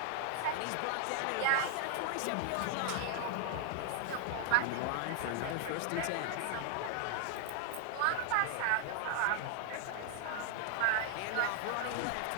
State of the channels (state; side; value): different; both; correlation 0.00